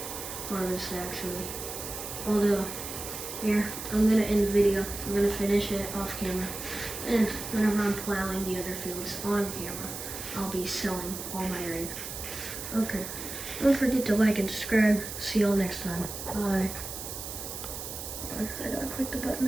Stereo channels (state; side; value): noise; right; hiss, 8 dB below the sound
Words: harvest actually. Although, here, I'm gonna end the video. I'm gonna finish it off camera. And whenever I'm plowing the other fields on camera, I'll be selling all my grain. Okay. Don't forget to like and subscribe. See y'all next time. Bye. I gotta click the